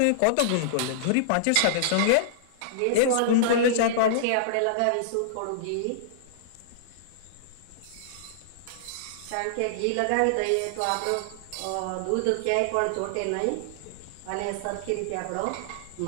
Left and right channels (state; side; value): different; both; correlation -0.02